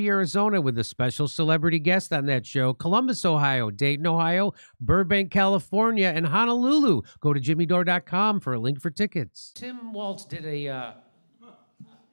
Arizona with a special celebrity guest on that show. Columbus, Ohio, Dayton, Ohio, Burbank, California, and Honolulu. Go to jimmydore.com for a link for tickets. Tim Walz did a...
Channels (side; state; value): both; inverted; correlation -1.00